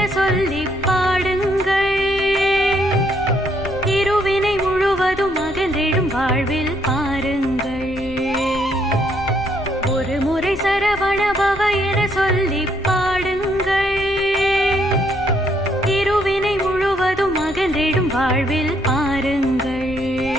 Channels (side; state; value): left; noise; rumble, 16 dB below the sound